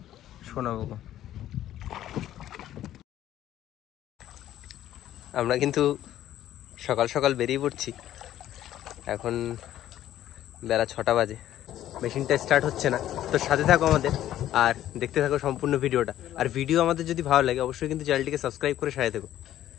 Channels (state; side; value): quieter; right; 12.5 dB